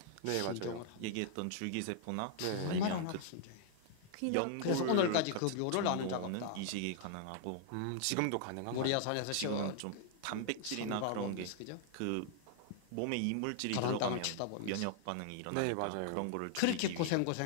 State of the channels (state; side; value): different; both; correlation -0.01